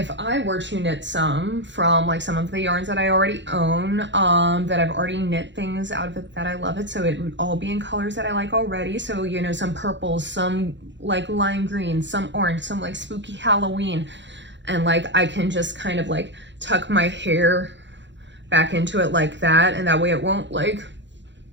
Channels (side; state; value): left; late; 0.53 ms